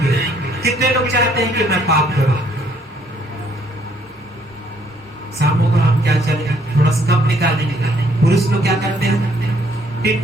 कितने लोग चाहते हैं कि मैं पाप करूं? शामों को हम क्या चले थोड़ा सा कम निकालेंगे। पुरुष लोग क्या करते हैं, टिप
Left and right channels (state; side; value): normal; both; correlation 0.66